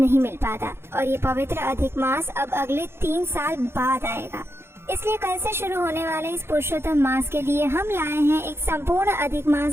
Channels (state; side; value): late; left; 0.12 ms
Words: मिल पाता। और ये पवित्र अधिक मास अब अगले 3 साल बाद आएगा। इसलिए कल से शुरू होने वाले इस पुरुषोत्तम मास के लिए हम लाए हैं एक संपूर्ण अधिक